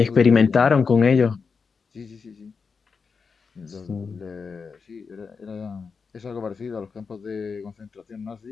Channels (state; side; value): quieter; right; 5.3 dB